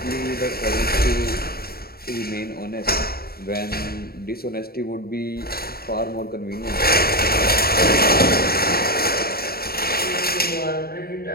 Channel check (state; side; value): late; right; 0.45 ms